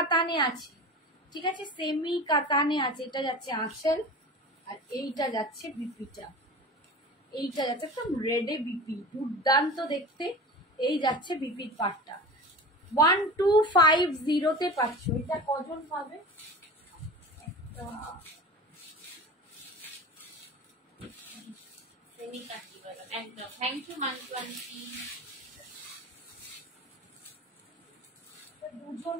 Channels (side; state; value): both; normal; correlation 0.34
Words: আছে, ঠিক আছে, সেমি কাতানে আছে। এটা যাচ্ছে আঁচল, আর এইটা যাচ্ছে বিপিটা, এইটা যাচ্ছে একদম রেডে বিপি, দুর্দান্ত দেখতে। এই যাচ্ছে বিপির পাটটা 1250 তে পাচ্ছ। এটা কজন পাবে? सेमी काटी वाला एकदम। Thank you Mantu aunty. দুজন